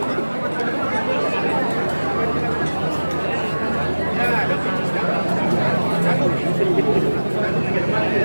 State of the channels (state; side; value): inverted; both; correlation -1.00